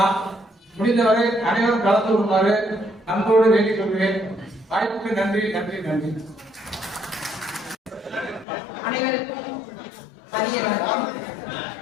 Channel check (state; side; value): drops out; right; at 8.5 s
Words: முடிந்தவரை அனைவரும் கலந்து கொள்ளுமாறு அன்போடு வேண்டிக் கொள்கிறேன். வாய்ப்புக்கு நன்றி, நன்றி, நன்றி. அனைவருக்கும் மதிய வணக்கம்.